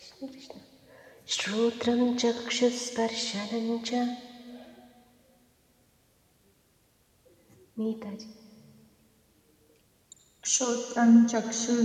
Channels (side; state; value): both; identical; correlation 1.00